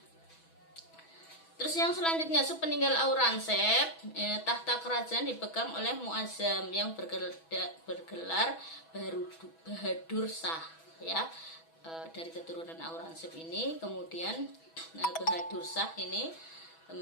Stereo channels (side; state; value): right; late; 6.1 ms